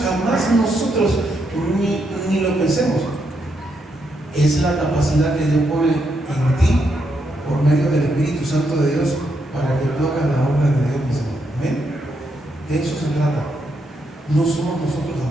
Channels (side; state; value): both; normal; correlation 0.79